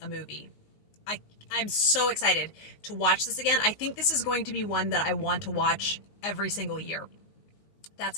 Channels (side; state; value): right; late; 19 ms